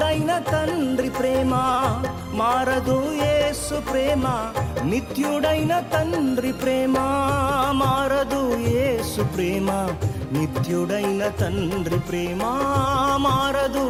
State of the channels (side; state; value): both; identical; correlation 1.00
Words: తండ్రి ప్రేమ మారదు యేసు ప్రేమ నిత్యుడైన తండ్రి ప్రేమ మారదు యేసు ప్రేమ నిత్యుడైన తండ్రి ప్రేమ మారదు